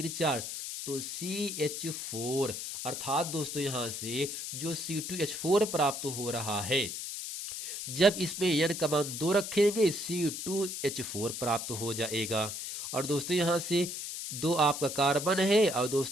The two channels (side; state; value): left; noise; hiss, 6 dB below the sound